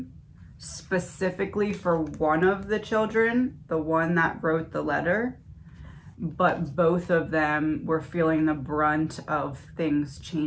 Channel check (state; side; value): identical; both; correlation 1.00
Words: specifically for one of the children, the one that wrote the letter, but both of them were feeling the brunt of things